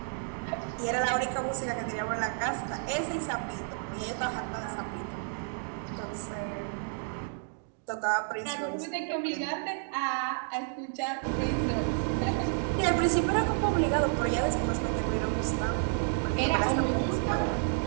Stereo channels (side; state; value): left; silent; 57 dB below the other